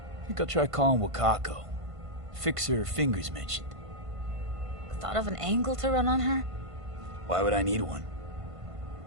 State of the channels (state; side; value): late; left; 1.5 ms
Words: I think I'll try calling Wakako. Fix her fingers mentioned. Thought of an angle to run on her? Why would I need one?